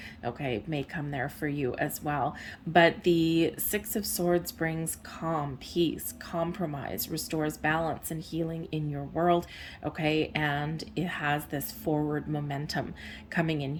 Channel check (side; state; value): both; identical; correlation 1.00